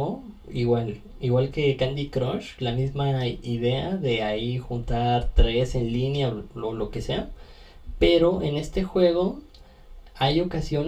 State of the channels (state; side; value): identical; both; correlation 1.00